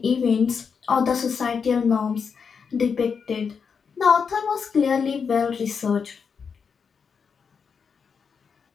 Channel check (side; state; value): right; quieter; 6.1 dB